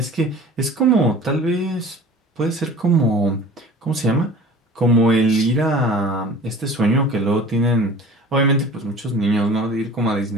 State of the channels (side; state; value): both; normal; correlation 0.43